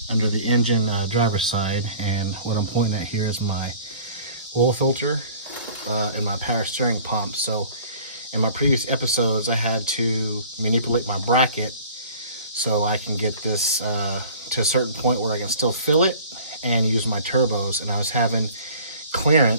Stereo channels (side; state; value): both; inverted; correlation -0.47